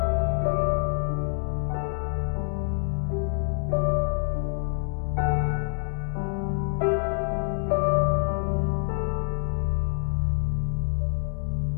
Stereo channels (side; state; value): right; silent; digital silence